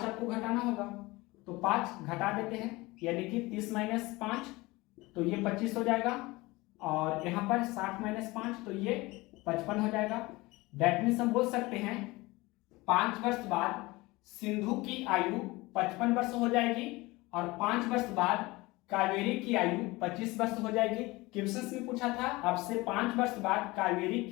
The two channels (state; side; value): quieter; right; 21.7 dB